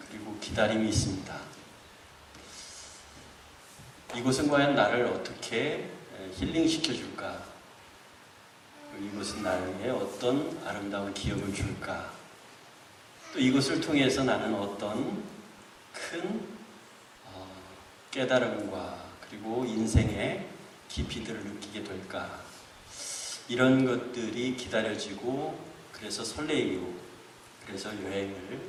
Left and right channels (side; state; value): both; identical; correlation 1.00